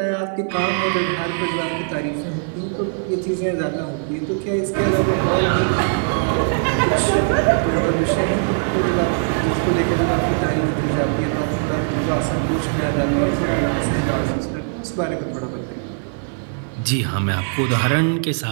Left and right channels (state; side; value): silent; left; 60 dB below the other